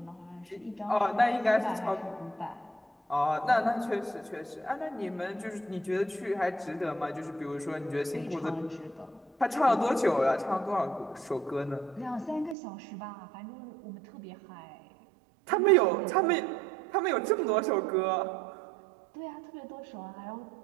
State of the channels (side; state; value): left; drops out; at 12.6 s